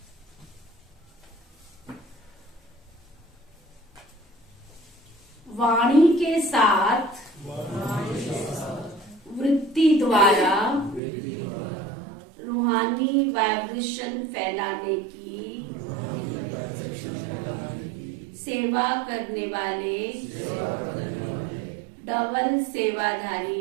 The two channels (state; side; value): drops out; left; at 11.0 s